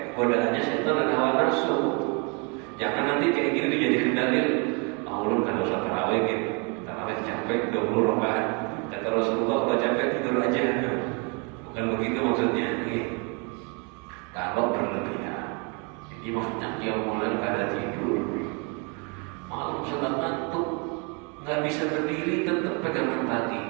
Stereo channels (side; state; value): left; quieter; 33.6 dB